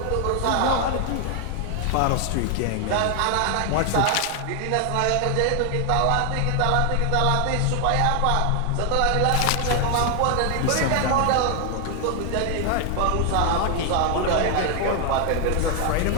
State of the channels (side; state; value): both; different; correlation 0.00